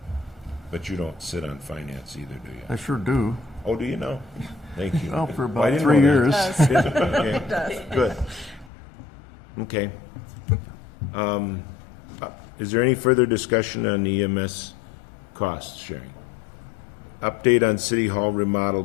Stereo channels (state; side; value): drops out; right; at 8.7 s